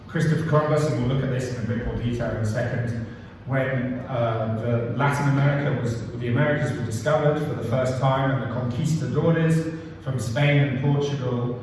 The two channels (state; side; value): identical; both; correlation 1.00